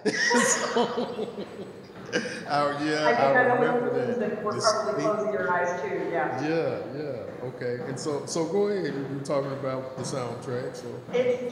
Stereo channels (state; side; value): identical; both; correlation 1.00